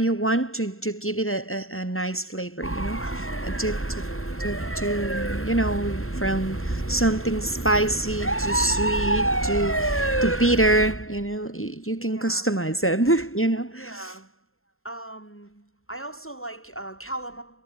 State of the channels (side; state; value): right; late; 0.61 ms